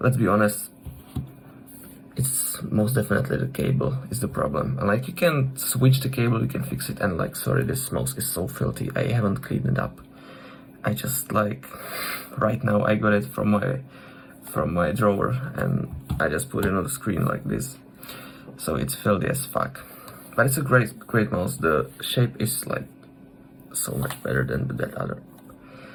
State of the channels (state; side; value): identical; both; correlation 1.00